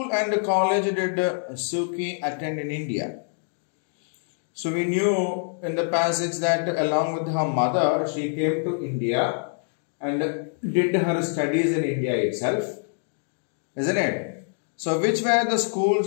and college did Suu Kyi attend in India? So we knew in the passage that along with her mother, she came to India and did her studies in India itself. Isn't it? So which were the schools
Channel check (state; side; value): silent; right; digital silence